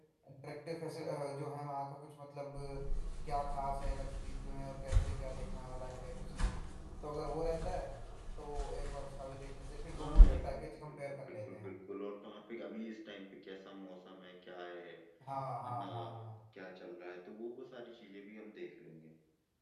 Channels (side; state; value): both; identical; correlation 1.00